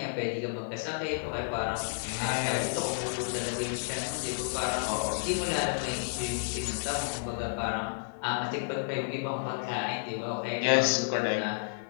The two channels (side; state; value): right; silent; digital silence